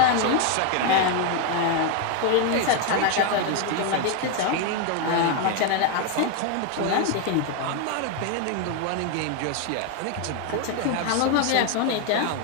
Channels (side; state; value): both; different; correlation 0.01